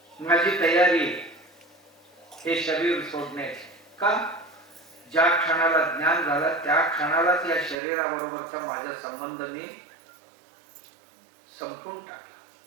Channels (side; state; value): left; drops out; at 7.8 s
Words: माझी तयारी हे शरीर सोडण्याची. का? ज्या क्षणाला ज्ञान झाला त्या क्षणालाच या शरीराबरोबरचा माझा संबंध मी संपून टाकला.